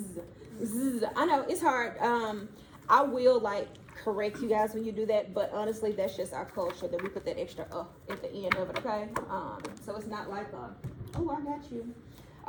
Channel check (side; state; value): both; identical; correlation 1.00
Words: Z. I know it's hard. I will like correct you guys when you do that, but honestly, that's just our culture that we put that extra at the end of it. Okay. So it's not like oh, I got you.